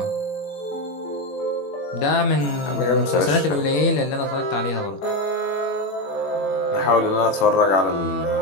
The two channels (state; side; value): late; right; 21 ms